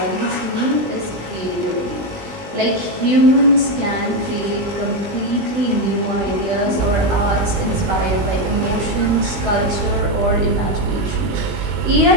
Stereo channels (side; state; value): left; late; 20 ms